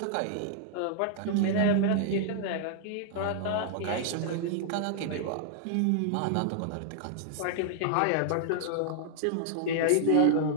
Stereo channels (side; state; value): both; different; correlation -0.01